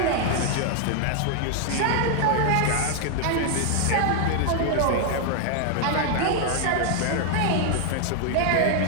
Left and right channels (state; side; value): different; both; correlation 0.00